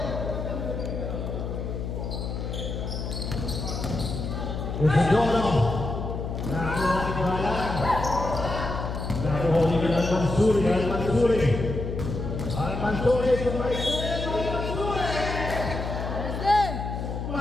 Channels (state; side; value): noise; left; hum, 4 dB below the sound